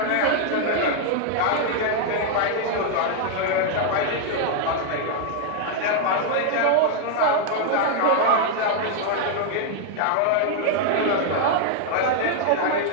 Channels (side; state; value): both; different; correlation 0.00